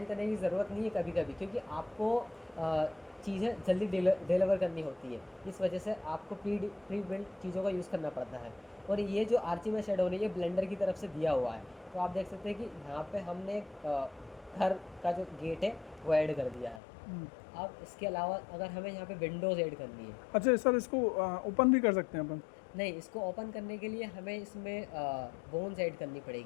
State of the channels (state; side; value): drops out; right; at 16.8 s